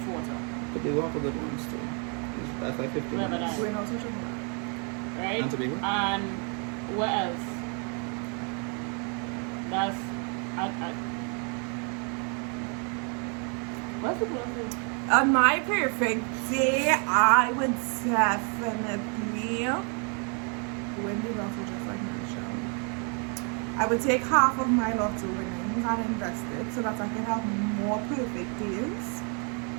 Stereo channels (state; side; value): quieter; left; 38.0 dB